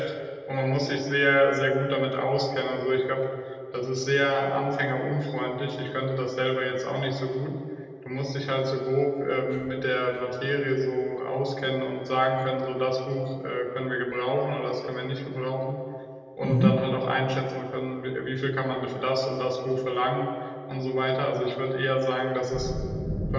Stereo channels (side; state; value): both; identical; correlation 1.00